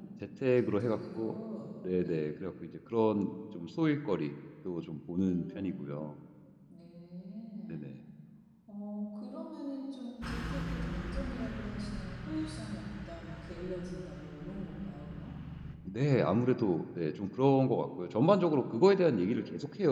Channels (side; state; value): both; identical; correlation 1.00